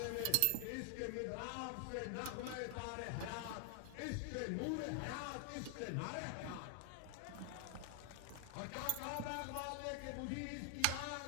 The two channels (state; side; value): different; both; correlation 0.00